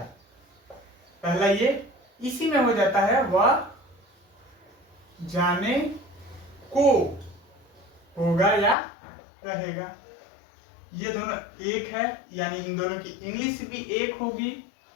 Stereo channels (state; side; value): drops out; right; at 8.8 s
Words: पहला ये इसी में हो जाता है, वह जाने को होगा या रहेगा। ये दोनों एक है, यानी इन दोनों की इंग्लिश भी एक होगी।